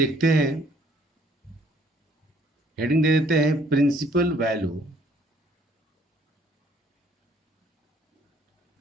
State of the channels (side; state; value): both; normal; correlation 0.61